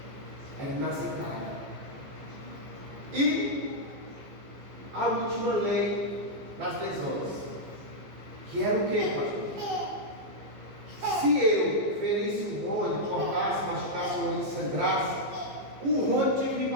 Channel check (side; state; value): left; late; 15 ms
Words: Era inaceitável. E a última lei das lesões, que era o que, pastor? Se eu ferisse um Rony, cortasse, machucasse o Rony e sangrasse, o Rony tinha que me